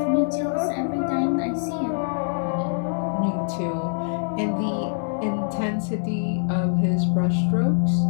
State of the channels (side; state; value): right; silent; 62 dB below the other